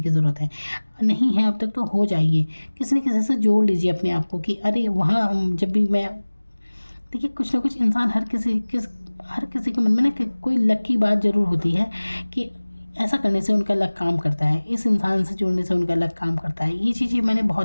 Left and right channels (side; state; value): both; inverted; correlation -1.00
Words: ज़रूरत है। नहीं है अब तक तो हो जाइए, किसी न किसी से जोड़ लीजिए अपने आप को कि अरे वहाँ जब भी मैं देखिए कुछ ना कुछ इंसान हर किसी के मन में ना कोई लक की बात ज़रूर होती है कि ऐसा करने से उनका लक काम करता है, इस इंसान से जुड़ने से उनका लक काम करता है। ये चीज़ें मैंने